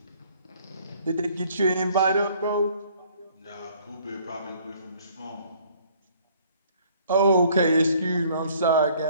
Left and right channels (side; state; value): both; inverted; correlation -0.59